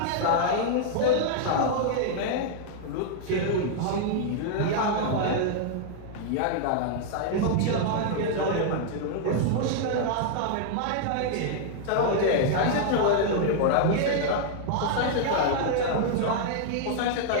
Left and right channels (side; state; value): both; different; correlation -0.01